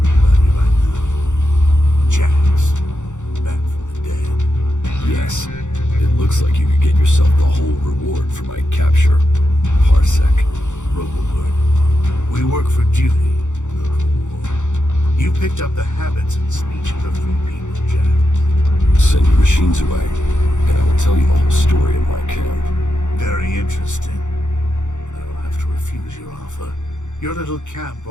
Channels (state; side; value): late; right; 0.85 ms